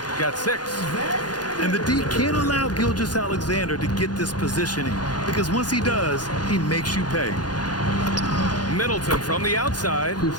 got 6. And the D can't allow Gilgeous-Alexander to get this positioning, because once he does, he makes you pay. Middleton from the outside.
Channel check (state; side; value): late; right; 0.69 ms